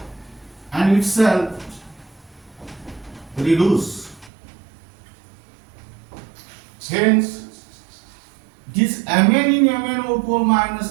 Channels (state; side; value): drops out; left; at 4.3 s